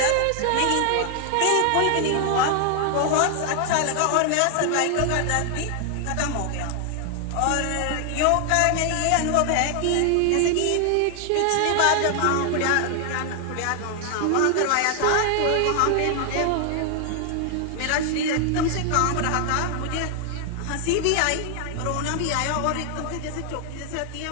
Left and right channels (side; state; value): both; different; correlation 0.00